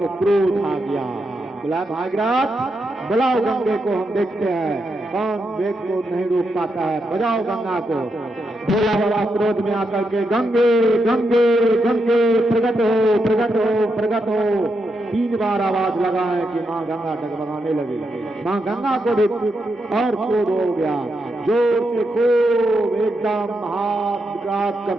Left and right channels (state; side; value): normal; both; correlation 0.83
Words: क्रोध आ गया। बोला भागीरथ बुलाओ गंगे को, हम देखते हैं कौन वेग को नहीं रोक पाता है, बजाओ गंगा को। भोला बाबा क्रोध में आकर के गंगे गंगे गंगे प्रगट हो प्रगट हो प्रगट हो 3 बार आवाज लगाए कि माँ गंगा डगमगाने लगी। माँ गंगा को भी और क्रोध हो गया, जोर से खूब एकदम हाथ